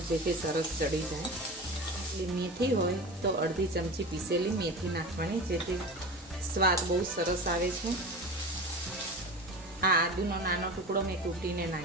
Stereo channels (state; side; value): normal; both; correlation 0.30